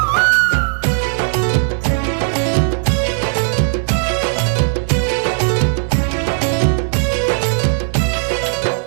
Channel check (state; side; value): silent; left; 59 dB below the other